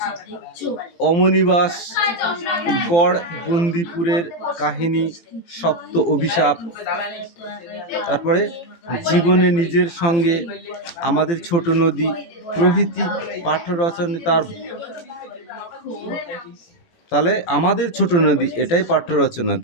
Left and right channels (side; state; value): right; late; 17 ms